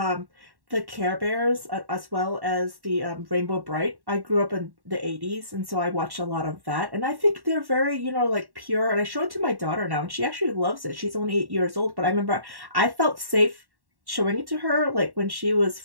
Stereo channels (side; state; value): left; late; 1.1 ms